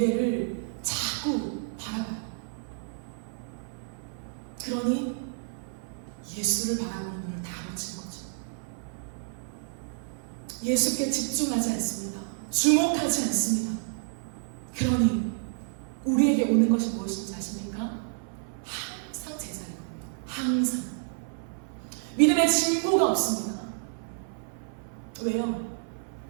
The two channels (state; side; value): silent; left; 56 dB below the other